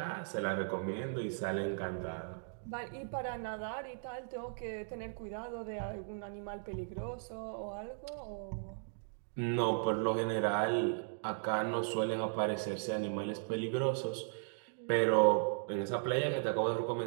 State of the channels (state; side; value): silent; left; digital silence